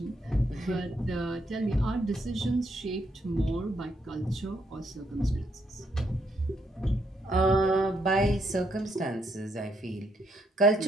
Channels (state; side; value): normal; both; correlation 0.74